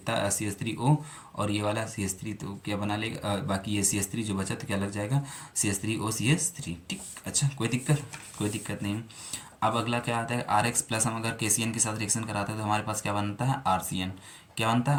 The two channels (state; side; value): identical; both; correlation 1.00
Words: सी एस थ्री ओ और ये वाला सी एस थ्री, तो क्या बना लेगा, बाकी ये सी एस थ्री जो बचा तो क्या लग जाएगा, C S three O C S three, ठीक। अच्छा, कोई दिक्कत नहीं। अब अगला क्या आता है, आर एक्स प्लस हम अगर के सी एन के साथ रिएक्शन कराते हैं तो हमारे पास क्या बनता है, आर सी एन। क्या बनता